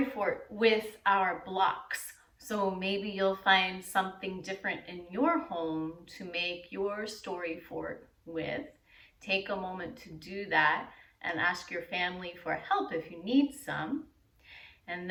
fort with our blocks. So maybe you'll find something different in your home to make your story fort with. Take a moment to do that and ask your family for help if you need some. And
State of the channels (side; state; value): both; identical; correlation 1.00